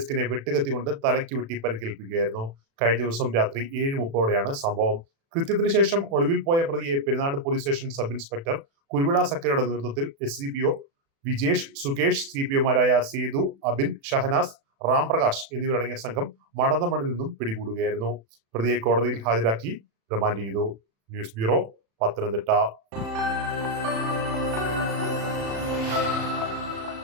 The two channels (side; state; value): left; late; 36 ms